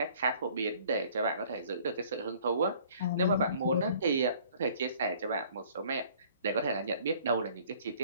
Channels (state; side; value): inverted; both; correlation -0.55